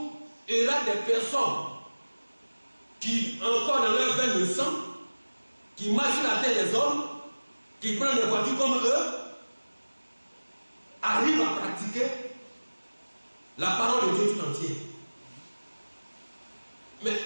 il y aura des personnes qui, encore dans leur veine de sang, qui marchent sur la terre des hommes, qui prennent des voitures comme eux, arrivent à pratiquer la parole de Dieu tout entier. Mais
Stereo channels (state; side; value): inverted; both; correlation -1.00